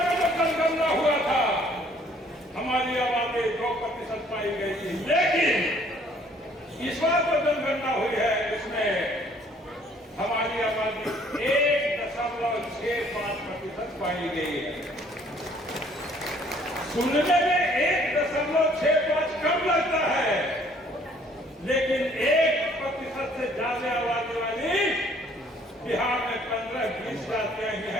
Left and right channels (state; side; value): normal; both; correlation 0.60